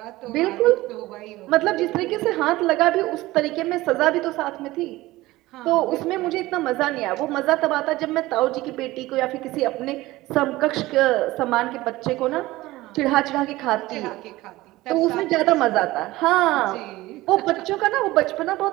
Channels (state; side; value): quieter; left; 18.4 dB